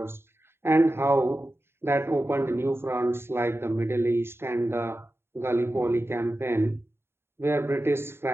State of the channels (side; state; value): left; late; 0.11 ms